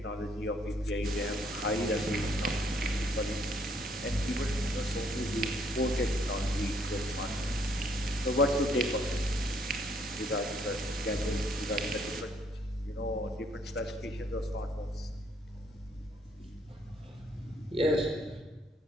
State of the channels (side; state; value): both; normal; correlation 0.67